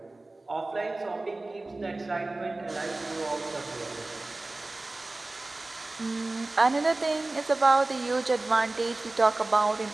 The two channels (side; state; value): left; quieter; 3.0 dB